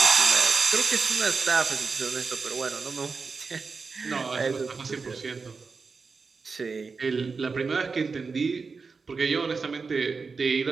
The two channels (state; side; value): quieter; left; 4.7 dB